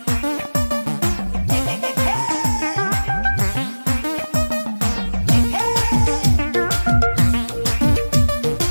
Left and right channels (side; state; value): both; inverted; correlation -1.00